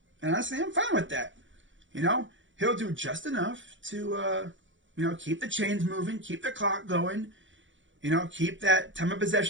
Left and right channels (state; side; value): late; left; 0.56 ms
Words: And honestly, I'm fine with that. He'll do just enough to, keep the chains moving, keep the clock going, keep that time of